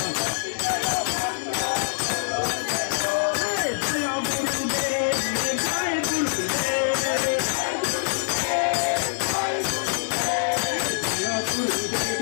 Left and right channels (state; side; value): silent; right; 62 dB below the other